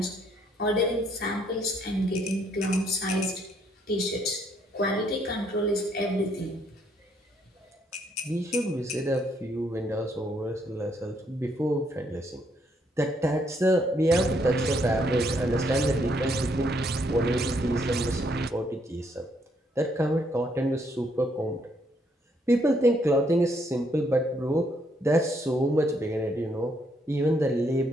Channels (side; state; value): both; normal; correlation 0.71